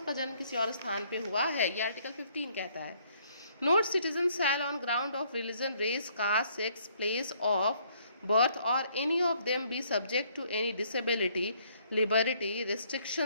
जन्म किसी और स्थान पे हुआ है. ये आर्टिकल 15 कहता है. No citizen shall on ground of religion, race, caste, sex, place of birth or any of them be subject to any disability, liberty,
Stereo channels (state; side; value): inverted; both; correlation -0.66